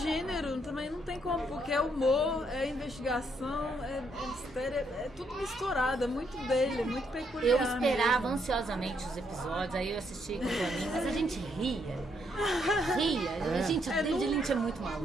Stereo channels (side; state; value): both; normal; correlation 0.74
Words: também não tem como, porque é humor, é investigação, é mistério, é tudo misturado, é muito dele, é muito peculiar. Eu esperava mesmo. ansiosamente os episódios, aí eu assisti com o Toninho, mas a gente ria. Gente, o David Lynch é muito maluco.